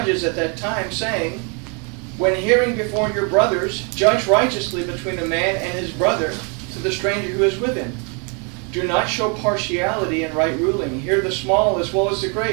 at that time, saying, when hearing before your brothers, judge righteously between a man and his brother, to the stranger who is with him. Do not show partiality in right ruling. Hear the small as well as the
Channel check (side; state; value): left; quieter; 35.7 dB